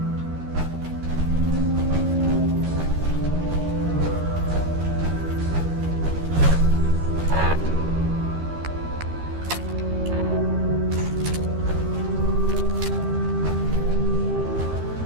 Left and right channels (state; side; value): late; left; 13 ms